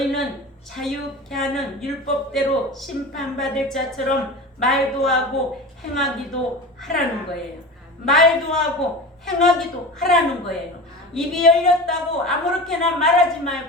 자유케 하는 율법대로 심판받을 자처럼 말도 하고 행하기도 하라는 거예요. 말도 하고 행하기도 하라는 거예요. 입이 열렸다고 아무렇게나 말하지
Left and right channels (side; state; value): both; normal; correlation 0.30